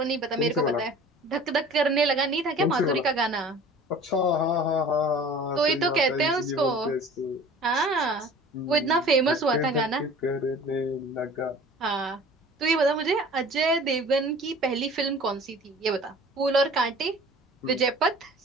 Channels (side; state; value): both; normal; correlation 0.45